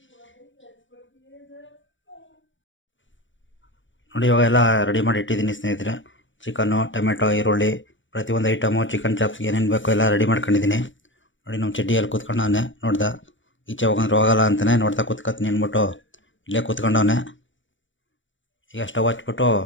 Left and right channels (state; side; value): late; right; 0.55 ms